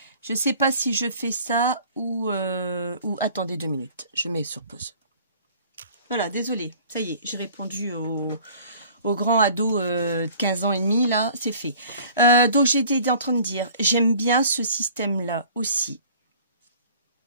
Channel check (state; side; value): inverted; both; correlation -0.49